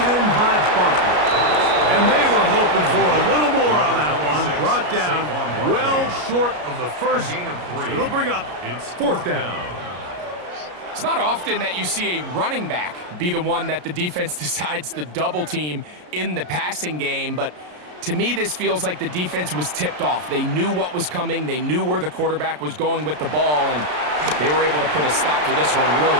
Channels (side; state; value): left; late; 33 ms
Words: in by Barkley. And they were hoping for a little more on that one. Brought down well short of the first. So it'll bring up 4th down. It's not often that you see a running back be the one that the defense decides to double team in the passing game, but to me, this feels like the defense was tipped off. They knew what was coming. They knew where the quarterback was going with the ball, and they were able to put a stop to this one really